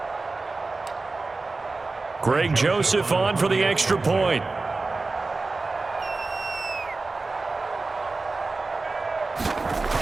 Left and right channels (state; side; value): quieter; left; 3.6 dB